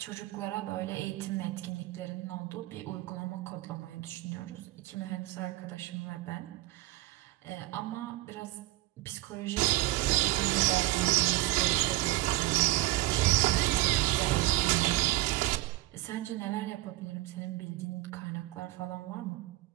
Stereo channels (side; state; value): left; quieter; 18.5 dB